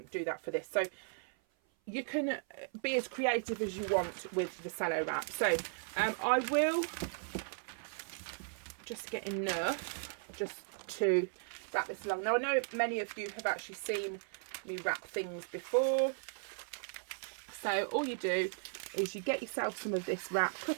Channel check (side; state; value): left; silent; 53 dB below the other